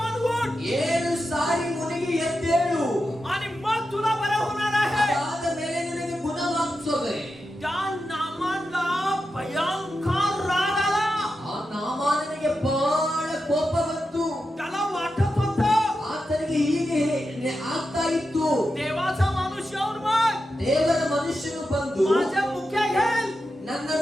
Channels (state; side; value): normal; both; correlation 0.89